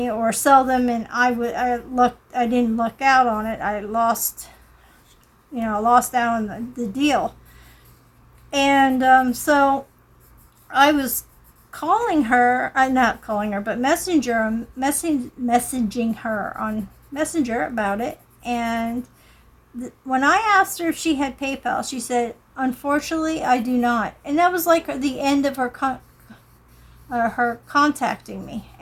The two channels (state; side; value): identical; both; correlation 1.00